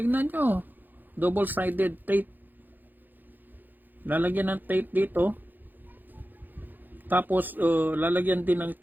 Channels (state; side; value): late; left; 0.087 ms